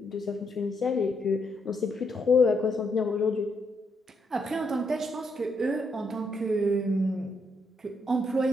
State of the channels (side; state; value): both; normal; correlation 0.77